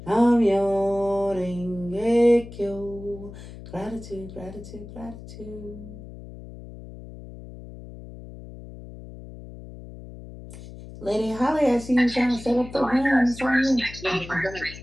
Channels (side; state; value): left; noise; hum, 15 dB below the sound